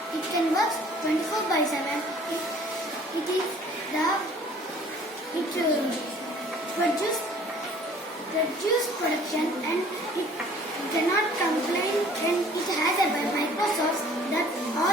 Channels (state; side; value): normal; both; correlation 0.53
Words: it can work 24/7. It produce production and it cannot complain and it has a Microsoft that